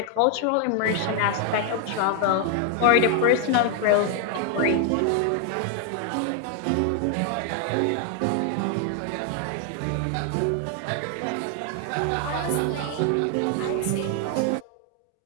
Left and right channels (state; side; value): different; both; correlation 0.00